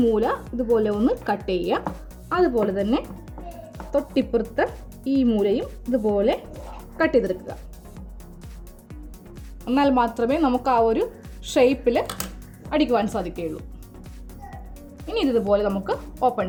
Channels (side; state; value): both; identical; correlation 1.00